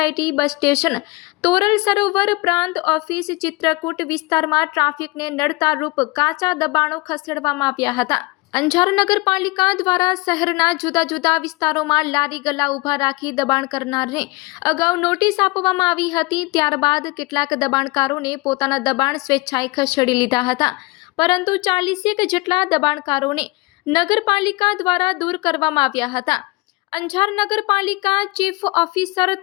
bus station, Toral Sarovar પ્રાંત ઓફિસ, ચિત્રકૂટ વિસ્તારમાં ટ્રાફિકને નડતા રૂપ કાચા દબાણો ખસેડવામાં આવ્યા હતા। અંજાર નગરપાલિકા દ્વારા શહેરના જુદા જુદા વિસ્તારોમાં લારી ગલ્લા ઊભા રાખી દબાણ કરનારને અગાઉ નોટિસ આપવામાં આવી હતી। ત્યારબાદ કેટલાક દબાણકારોને પોતાના દબાણ સ્વેચ્છાએ ખસેડી લીધા હતા, પરંતુ 40 જેટલા દબાણકારોને નગરપાલિકા દ્વારા દૂર કરવામાં આવ્યા હતા। અંજાર નગરપાલિકા ચીફ ઓફિસર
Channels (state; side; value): quieter; right; 24.2 dB